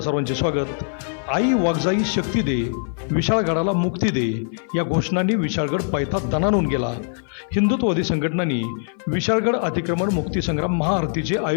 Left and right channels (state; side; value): silent; right; 56 dB below the other